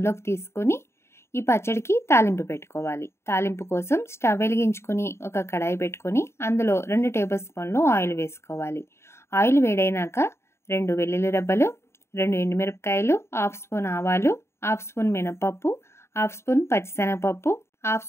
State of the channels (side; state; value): right; late; 0.13 ms